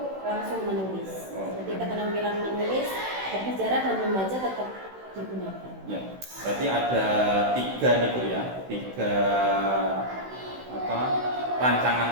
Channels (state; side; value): late; left; 16 ms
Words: langsung menulis. Jadi keterampilan menulis, berbicara dan membaca tetap digunakan. Ya, berarti ada tiga nih Bu ya, tiga rancangan